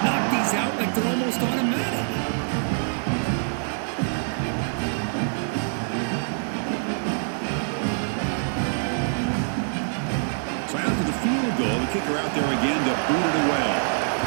knock these out like they're almost automatic. So after the field goal, the kicker out there again to boot it away.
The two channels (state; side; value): silent; left; digital silence